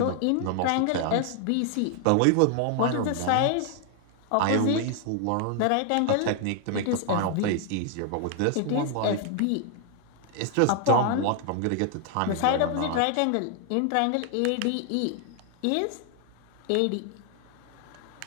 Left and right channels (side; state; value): both; different; correlation 0.00